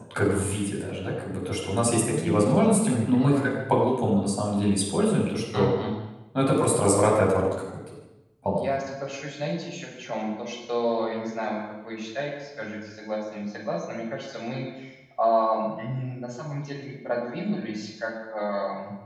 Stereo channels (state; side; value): identical; both; correlation 1.00